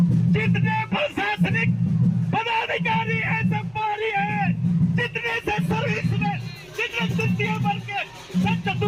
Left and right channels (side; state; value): right; noise; hum, 28 dB below the sound